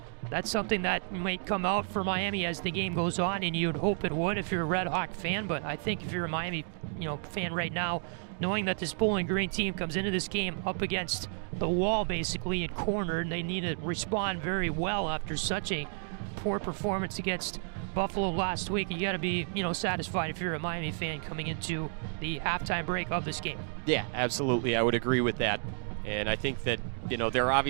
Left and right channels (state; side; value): silent; left; digital silence